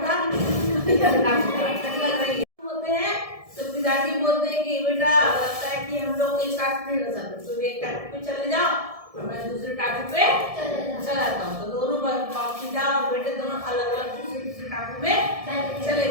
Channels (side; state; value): left; late; 1.7 ms